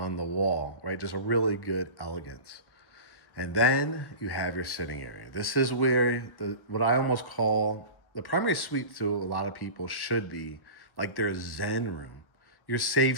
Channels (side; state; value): right; late; 1.1 ms